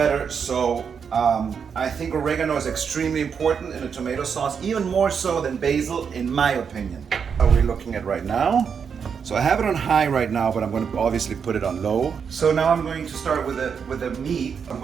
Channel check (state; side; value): quieter; left; 6.6 dB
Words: So I think oregano is extremely important in a tomato sauce, even more so than basil, in my opinion. How are we looking at right now? So I have it on high right now, but I'm going to obviously put it on low. So now I'm going to start with the meat. I'm